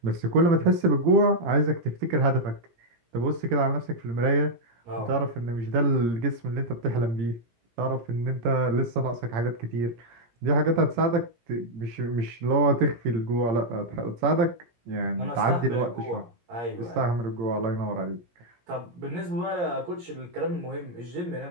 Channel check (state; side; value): late; left; 17 ms